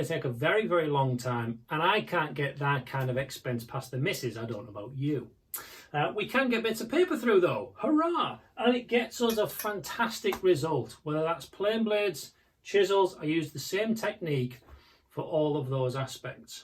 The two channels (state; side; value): identical; both; correlation 1.00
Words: to take a very, very long time, and I can't get that kind of expense past the missus. I don't know about you. We can get bits of paper through though, hurrah! And it gets us a fantastic result, whether that's plane blades, chisels. I use the same technique for all of those aspects.